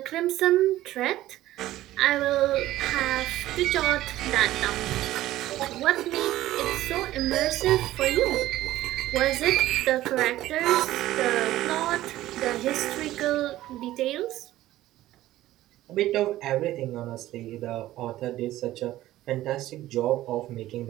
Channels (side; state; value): left; quieter; 15.0 dB